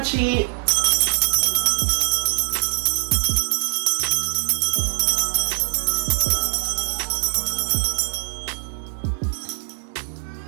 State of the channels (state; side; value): silent; left; digital silence